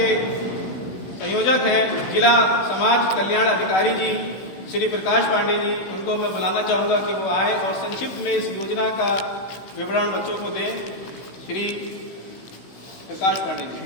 संयोजक हैं जिला समाज कल्याण अधिकारी जी श्री प्रकाश पांडे जी, उनको मैं बुलाना चाहूँगा कि वो आए और संक्षिप्त में इस योजना का विवरण बच्चों को दें। श्री प्रकाश पांडे जी।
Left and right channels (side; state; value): right; late; 16 ms